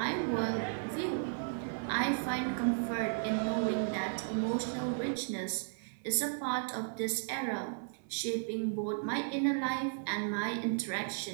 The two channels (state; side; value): silent; left; 55 dB below the other